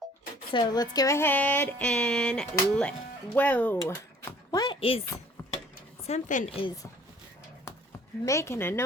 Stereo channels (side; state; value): both; normal; correlation 0.54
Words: So let's go ahead and whoa. What is, something is making a